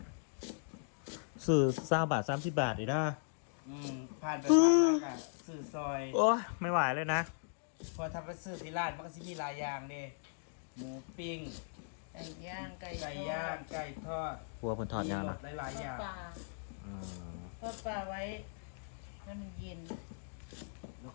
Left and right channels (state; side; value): silent; right; digital silence